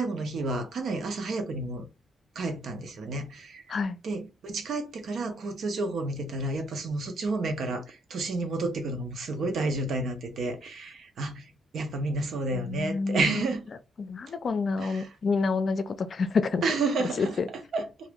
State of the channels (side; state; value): both; normal; correlation 0.71